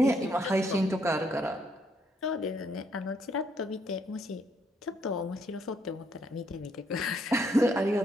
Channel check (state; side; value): normal; both; correlation 0.72